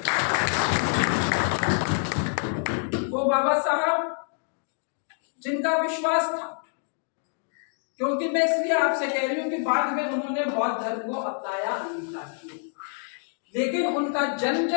वो बाबा साहब जिनका विश्वास था, क्योंकि मैं इसलिए आपसे कह रही हूं कि बाद में उन्होंने बौद्ध धर्म को अपनाया, अंगीकार किया, लेकिन उनका जन्म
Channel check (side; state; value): right; silent; 61 dB below the other